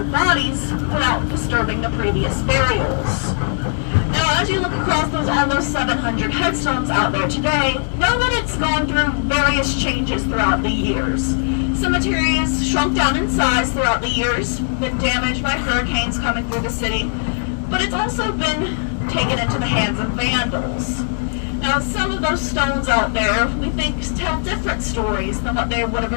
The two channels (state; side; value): silent; right; digital silence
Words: bodies without disturbing the previous burials. Now, as you look across those almost 700 headstones out there today, know that it's gone through various changes throughout the years. Cemetery has shrunk down in size throughout the years, been damaged by hurricanes coming through the city, but it's also been taken into the hands of vandals. Now, some of those stones out there, we think, tell different stories than what they would have